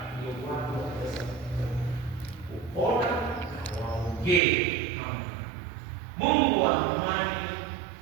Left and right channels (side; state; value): left; drops out; at 4.4 s